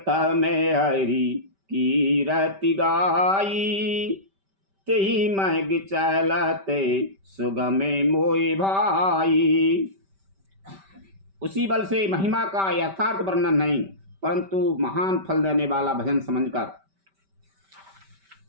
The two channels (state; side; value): late; left; 5.1 ms